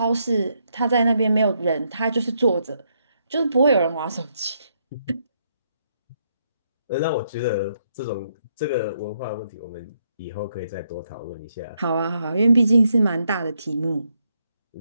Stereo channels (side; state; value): both; inverted; correlation -0.76